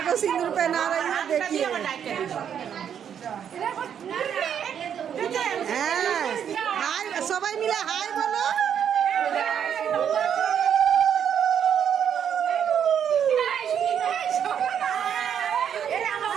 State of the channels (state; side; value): quieter; left; 8.5 dB